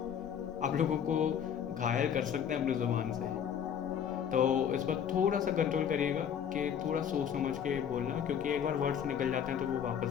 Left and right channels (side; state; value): right; quieter; 8.4 dB